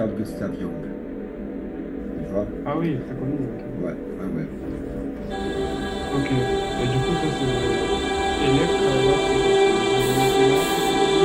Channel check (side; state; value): both; identical; correlation 1.00